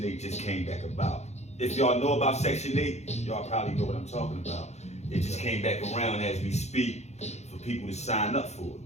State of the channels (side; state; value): right; late; 0.32 ms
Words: 8 just came back about. If y'all know about Section 8, y'all probably know what I'm talking about. It just came back around as we speak for people to sign up for it.